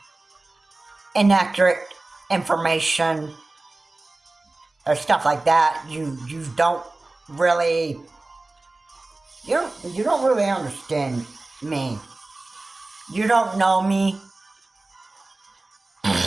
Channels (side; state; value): left; quieter; 3.1 dB